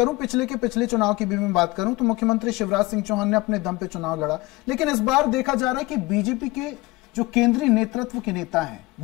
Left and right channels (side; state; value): right; quieter; 21.7 dB